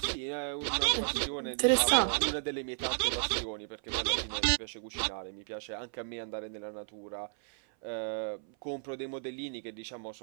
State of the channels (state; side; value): silent; left; 55 dB below the other